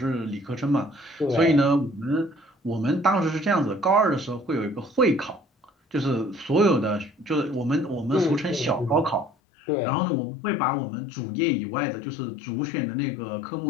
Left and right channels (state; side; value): drops out; right; at 9.3 s